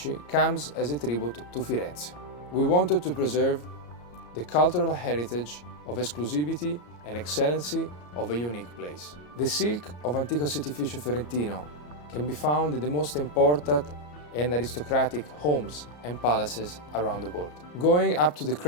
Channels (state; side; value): late; right; 34 ms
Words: comes as a tribute to Firenze. We wanted to preserve the cultural heritage of exclusivity and excellency of a unique place. The silk of Antico Setificio Fiorentino can be found in the most important and aristocratic homes and palaces around the world. Going up to the